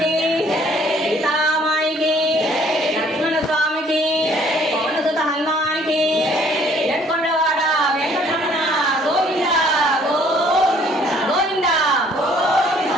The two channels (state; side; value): normal; both; correlation 0.60